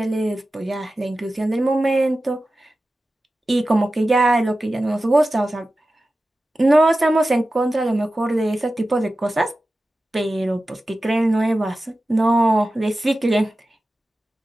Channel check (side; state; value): both; normal; correlation 0.94